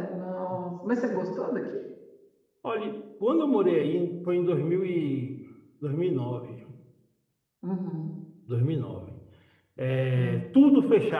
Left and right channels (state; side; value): identical; both; correlation 1.00